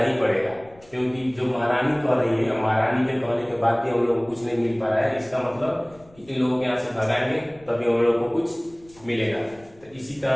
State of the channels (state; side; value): noise; left; rumble, 27 dB below the sound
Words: ही पड़ेगा, क्योंकि जो महारानी कह रही है, महारानी के कहने के बाद भी हम लोग को कुछ नहीं मिल पा रहा है। इसका मतलब कि इन लोगों के यहाँ से भगाएंगे तभी हम लोग को कुछ मिलेगा। तो इसी